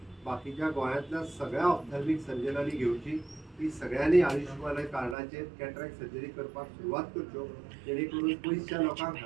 बाकीच्या गोंयांतल्या सगळ्या ऑप्थॅल्मिक सर्जनांनी घेवची की सगळ्यांनी आयुष्यमान कार्डाचेर कॅटरॅक्ट सर्जरी करपाक सुरवात करच्यो, जेणे करून पयसच्या लोकांक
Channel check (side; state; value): left; drops out; at 5.2 s